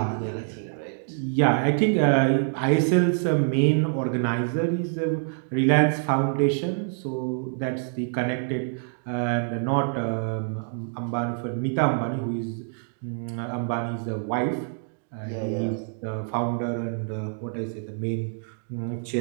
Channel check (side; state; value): left; silent; digital silence